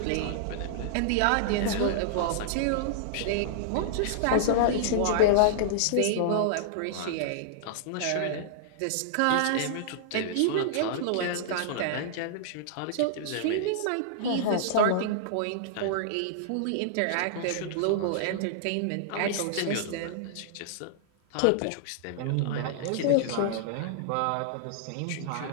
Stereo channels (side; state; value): both; different; correlation -0.02